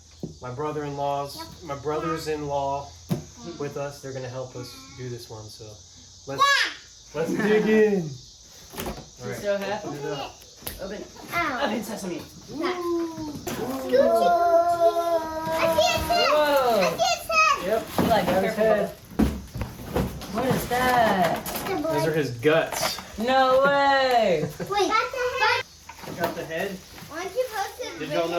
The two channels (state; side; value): identical; both; correlation 1.00